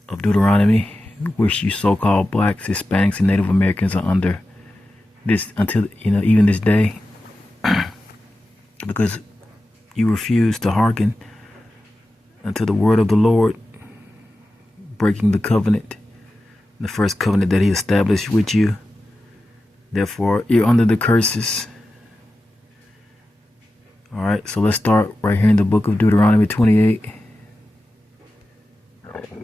of Deuteronomy, which you so-called blacks, Hispanics, and Native Americans are under this until even this day, because you refuse to hearken unto the word of the Lord, breaking the covenant, the first covenant that He established with you. Therefore, you're under the curses. All right, so let's start right here in the book of Deuteronomy 28.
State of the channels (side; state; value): both; normal; correlation 0.93